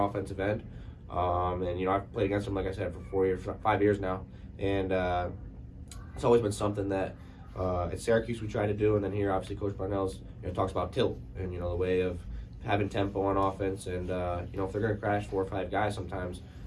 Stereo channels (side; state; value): both; identical; correlation 1.00